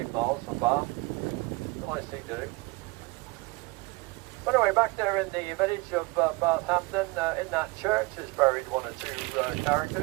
miles from Bath. It's a nice thing to do. But anyway, back there in the village of Bathampton, in that church is buried one or two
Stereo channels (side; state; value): left; quieter; 24.5 dB